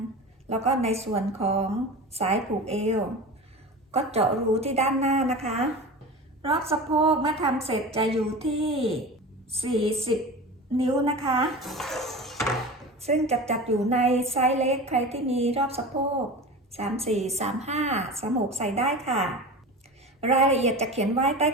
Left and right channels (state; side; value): normal; both; correlation 0.31